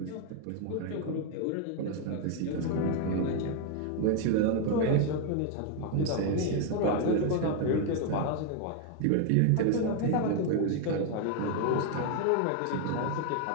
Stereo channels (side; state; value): both; different; correlation 0.01